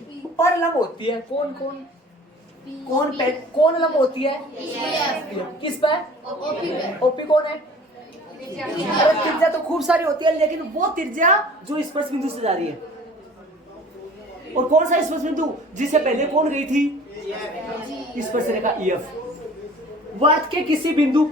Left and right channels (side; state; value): both; normal; correlation 0.47